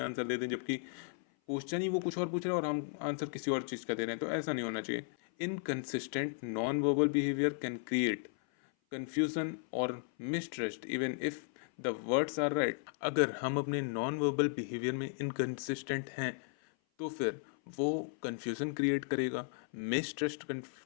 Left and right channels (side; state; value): right; silent; 54 dB below the other